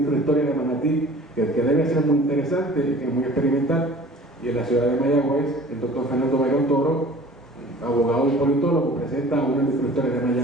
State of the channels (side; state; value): both; normal; correlation 0.46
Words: de Manatí que debe ser muy interesante y que es muy experimental. Y en la ciudad de Mayagüez, el doctor Fernando Bayrón Toro, abogado y politólogo, presenta una microhistoria de